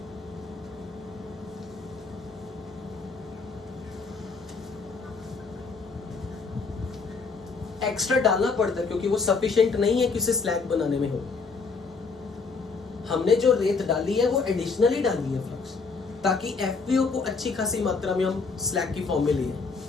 एक्स्ट्रा डालना पड़ता है क्योंकि वो सफिशिएंट नहीं है कि उसे स्लैग बनाने में हो। हमने जो रेत डाली है वो एडिशनली डाली है फ्लक्स, ताकि एफपीओ को अच्छी खासी मात्रा में हम स्लैग की फॉर्म में लिए।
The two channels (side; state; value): right; quieter; 4.6 dB